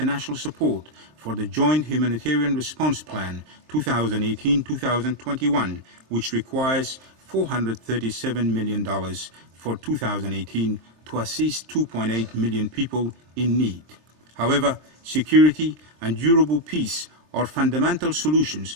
support for the Joint Humanitarian Response Plan 2018-2021, which requires $437 million for 2018 to assist 2.8 million people in need. However, security and durable peace are fundamental solutions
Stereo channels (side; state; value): left; late; 23 ms